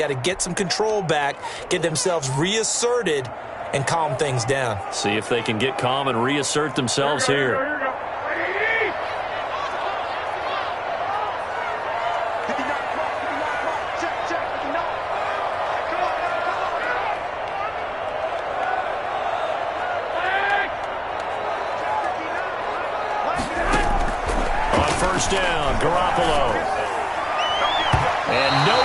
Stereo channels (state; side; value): identical; both; correlation 1.00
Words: to get some control back, get themselves reasserted, and calm things down. See if they can get calm and reassert themselves here. First down, Garoppolo. And